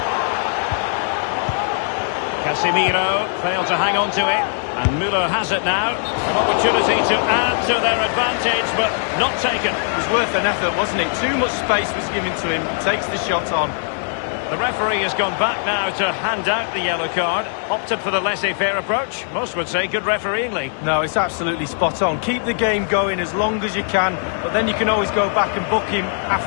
Casemiro failed to hang on to it. And Müller has it now. An opportunity to add to their advantage, but not taken. It was worth an effort, wasn't it? Too much space was given to him. Takes the shot on. The referee has gone back now to hand out the yellow card. Opted for the laissez-faire approach. Most would say good refereeing, Lee. No, it's absolutely spot on. Keep the game going as long as you can, but then you can always go back and book him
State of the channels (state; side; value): silent; right; digital silence